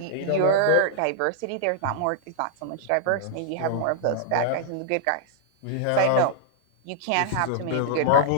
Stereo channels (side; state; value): both; different; correlation -0.01